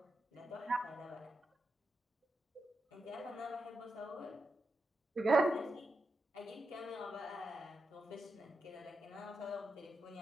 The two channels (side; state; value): both; normal; correlation 0.87